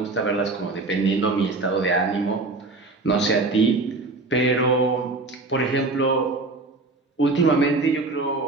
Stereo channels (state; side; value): quieter; left; 3.3 dB